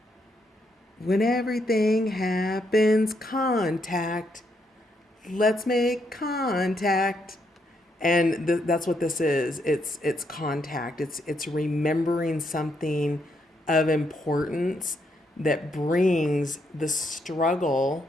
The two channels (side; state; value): both; normal; correlation 0.77